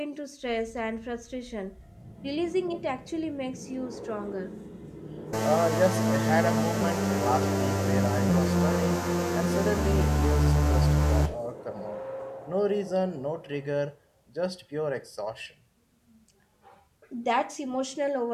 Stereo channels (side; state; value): both; identical; correlation 1.00